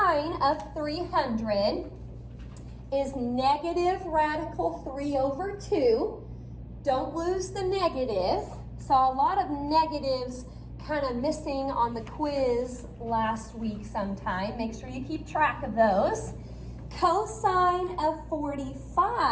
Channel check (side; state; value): both; identical; correlation 1.00